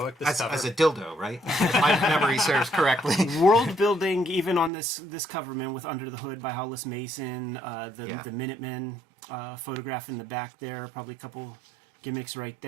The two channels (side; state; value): left; drops out; at 4.7 s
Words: This cover as a dildo, right? If my memory serves correctly. World building, even on this cover, man, with Under the Hood by Hollis Mason, the Minutemen photograph in the back there, probably a couple gimmicks right